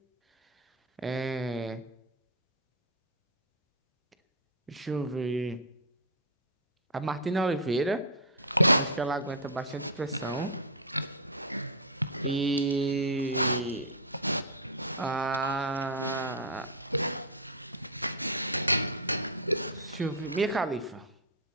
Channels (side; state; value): both; normal; correlation -0.12